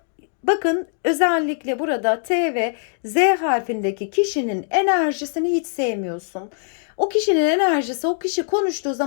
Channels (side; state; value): right; silent; digital silence